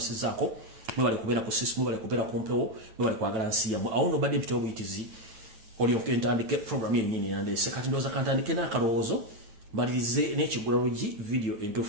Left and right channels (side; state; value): left; late; 9.0 ms